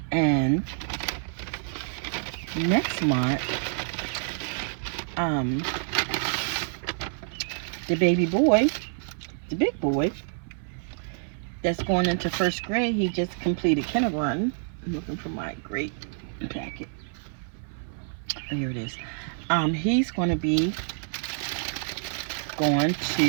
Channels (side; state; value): left; silent; 58 dB below the other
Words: And next month, the baby boy, the big boy, that's going into 1st grade, he just completed kindergarten. I'm looking for my great packet. Oh, here it is. He's going to be going